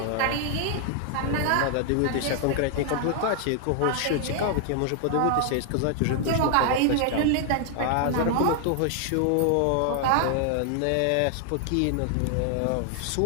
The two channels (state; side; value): different; both; correlation 0.00